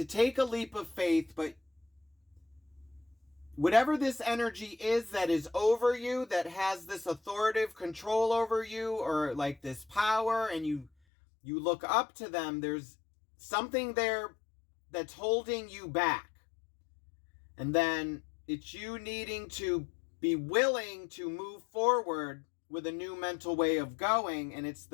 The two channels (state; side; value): drops out; right; at 10.9 s